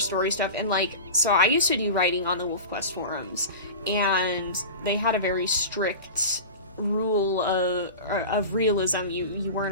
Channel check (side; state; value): both; inverted; correlation -0.31